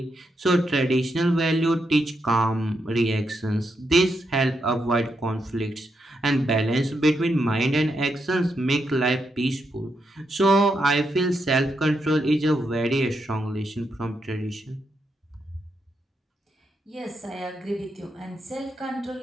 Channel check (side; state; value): both; normal; correlation 0.82